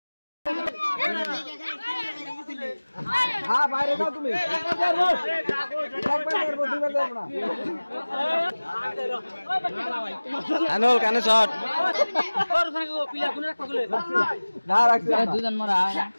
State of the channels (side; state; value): both; inverted; correlation -1.00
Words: বাইরে যাও তুমি আনুল কানে শট না রাখছি দুজন মরা